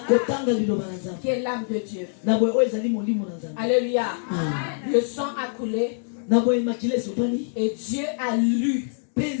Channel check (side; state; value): right; silent; digital silence